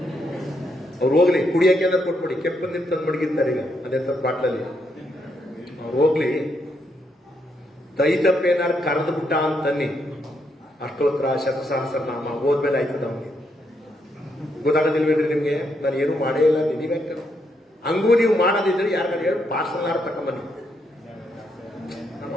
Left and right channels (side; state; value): both; normal; correlation 0.78